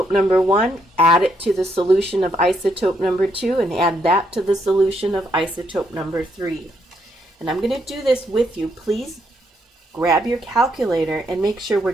number 1, add it to the solution of isotope number 2, and add that to the solution of isotope number 3. And I'm going to do this with you. Please grab your calculator and make sure we're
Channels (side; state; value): both; normal; correlation 0.75